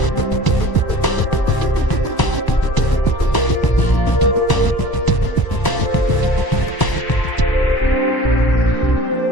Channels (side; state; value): right; late; 1.0 ms